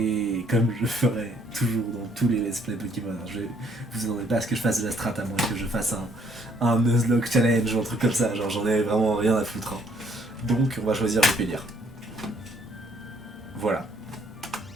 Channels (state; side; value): normal; both; correlation 0.66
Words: comme je ferai toujours dans tous les let's play Pokémon. Vous attendez pas à ce que je fasse de la strat, à moins que je fasse un Nuzlocke challenge ou un truc comme ça, genre j'en ai vraiment rien à foutre. Hein. Donc on va choisir Vipélière. Voilà.